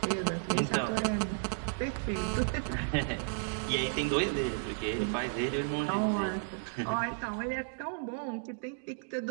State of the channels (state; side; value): silent; left; digital silence